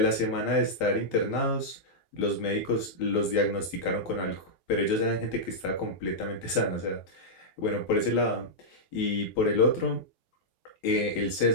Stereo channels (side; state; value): right; late; 12 ms